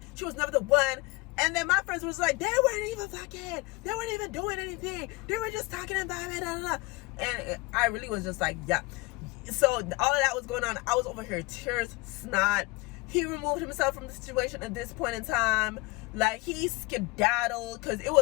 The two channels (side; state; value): right; quieter; 24.5 dB